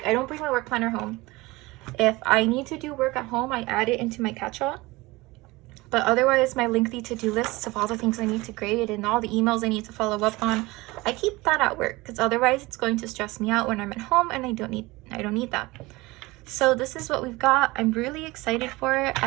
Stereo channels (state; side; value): quieter; left; 21.5 dB